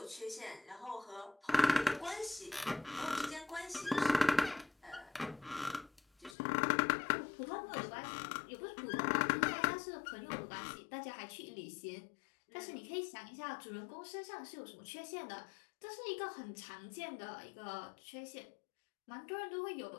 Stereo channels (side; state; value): right; drops out; at 6.4 s